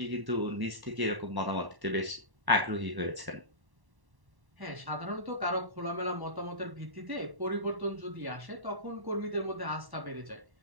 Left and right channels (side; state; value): left; late; 1.1 ms